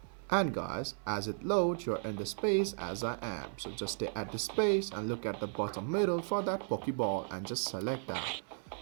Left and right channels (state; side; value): silent; left; 54 dB below the other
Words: And guys, as it loads, you're in the space as I am. So just stay at the space and look at the bottom middle for that Pokeball and just select that.